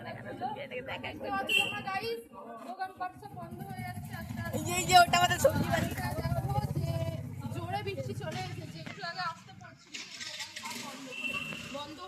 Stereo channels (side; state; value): both; identical; correlation 1.00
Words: দেখতে পাচ্ছ তোমরা গাইস। দোকানপাট সব বন্ধ হয়ে যাচ্ছে আস্তে আস্তে। এই যে ওটা আমাদের সবজি বাড়ি, দেখো যে জোরে বৃষ্টি চলে এসেছে। একটু আগে আসতে পড়ছিল, বন্ধ